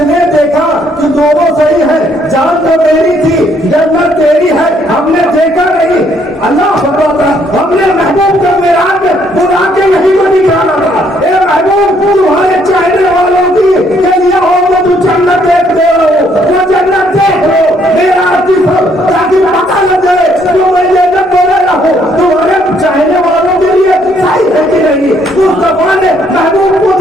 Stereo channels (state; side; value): normal; both; correlation 0.68